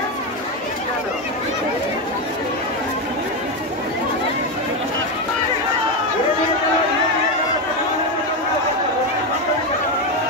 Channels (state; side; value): normal; both; correlation 0.10